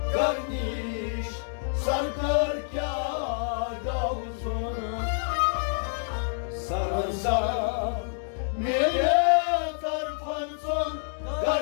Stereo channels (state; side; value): silent; right; digital silence